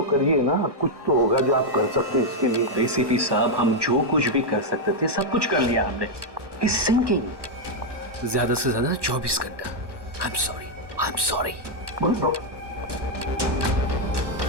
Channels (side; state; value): left; late; 1.1 ms